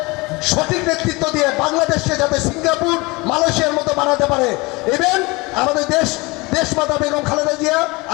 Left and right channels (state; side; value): quieter; right; 24.5 dB